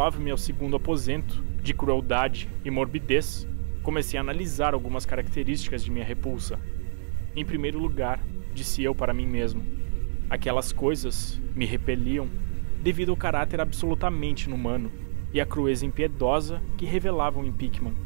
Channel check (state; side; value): silent; left; digital silence